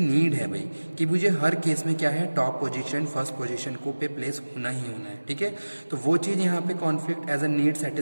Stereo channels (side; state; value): both; inverted; correlation -1.00